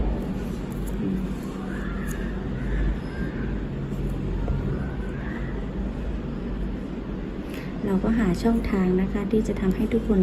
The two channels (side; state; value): both; identical; correlation 1.00